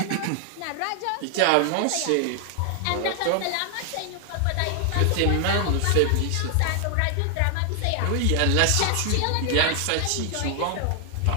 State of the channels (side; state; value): both; different; correlation 0.00